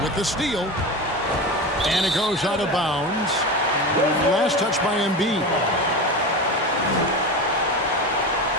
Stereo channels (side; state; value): both; normal; correlation 0.25